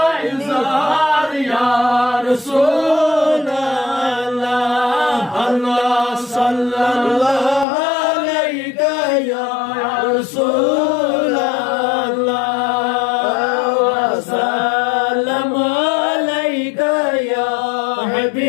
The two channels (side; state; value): right; drops out; at 7.7 s